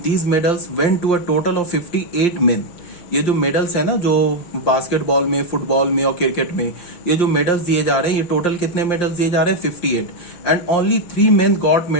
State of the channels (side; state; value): right; late; 5.7 ms